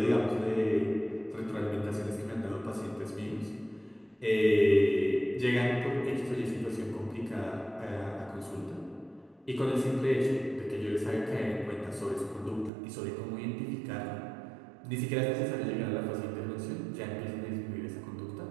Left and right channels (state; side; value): drops out; left; at 12.7 s